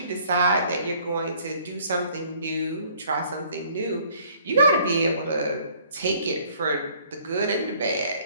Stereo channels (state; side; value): inverted; both; correlation -0.58